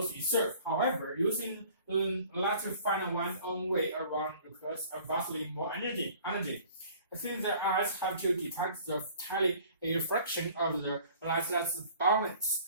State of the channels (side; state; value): both; inverted; correlation -0.51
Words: itself. However, using light to find one's own way around requires vastly more energy. Since the eyes have to detect the tiny refraction of the light that's